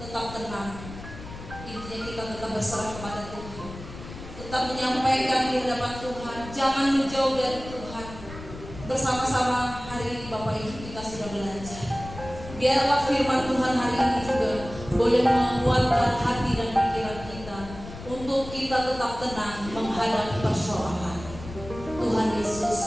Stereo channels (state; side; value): noise; left; rumble, 13 dB below the sound